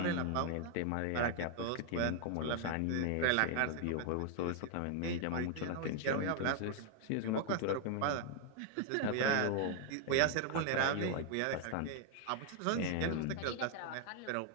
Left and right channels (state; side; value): different; both; correlation 0.00